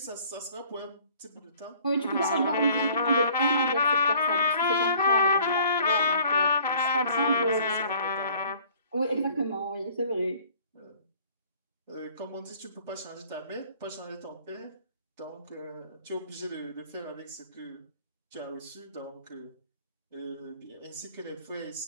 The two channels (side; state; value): both; inverted; correlation -0.54